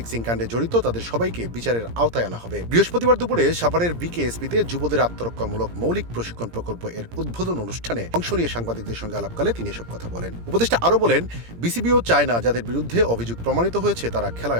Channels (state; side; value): late; left; 17 ms